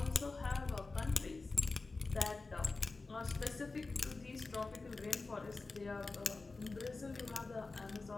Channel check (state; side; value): quieter; right; 3.7 dB